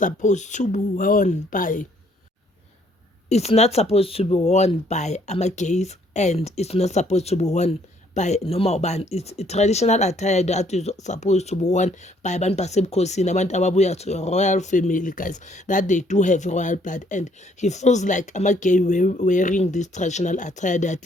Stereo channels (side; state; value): both; normal; correlation 0.65